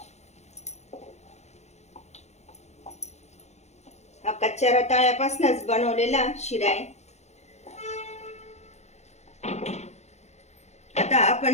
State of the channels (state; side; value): late; right; 0.32 ms